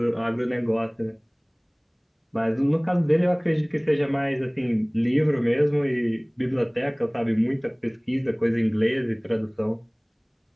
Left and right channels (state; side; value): identical; both; correlation 1.00